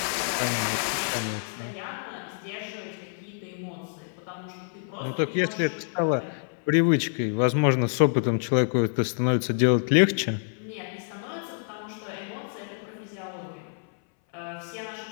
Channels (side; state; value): right; silent; 59 dB below the other